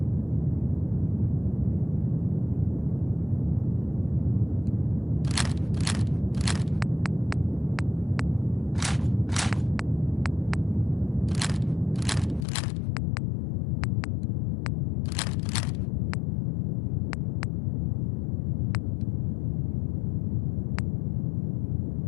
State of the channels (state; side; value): drops out; right; at 12.5 s